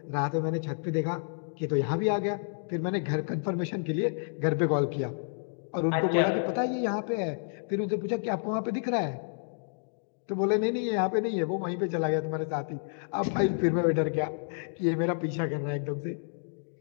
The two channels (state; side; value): silent; right; digital silence